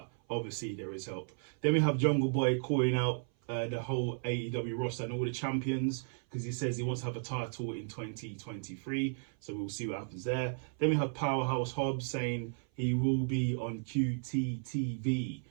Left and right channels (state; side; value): silent; left; 55 dB below the other